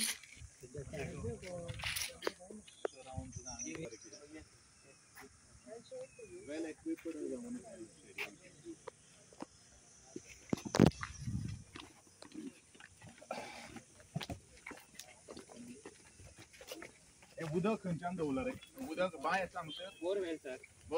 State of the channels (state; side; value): identical; both; correlation 1.00